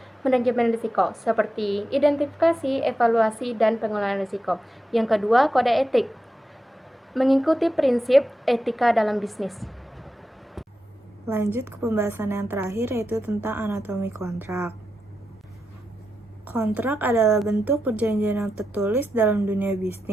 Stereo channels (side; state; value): both; normal; correlation 0.89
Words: manajemen risiko seperti identifikasi, evaluasi, dan pengelolaan risiko. Yang kedua, kode etik. Mengikuti prinsip etika dalam bisnis. Lanjut ke pembahasan yang terakhir, yaitu tentang anatomi kontrak. Kontrak adalah bentuk perjanjian yang tertulis dalam dunia